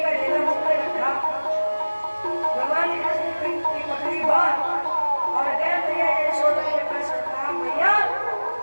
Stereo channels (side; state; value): both; inverted; correlation -1.00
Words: का ढेला मुंह में रखा, भगवान कृष्ण की पकड़ी बात और गए भैया यशोदा के पास। कहा भैया